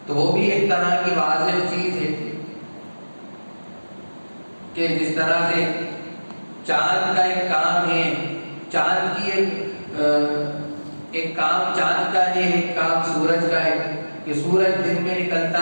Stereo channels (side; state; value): both; inverted; correlation -1.00